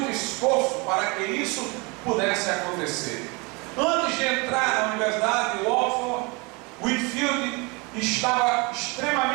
esforço para que isso pudesse acontecer. Antes de entrar na Universidade de Oxford, Whitefield estava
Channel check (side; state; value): left; quieter; 28.3 dB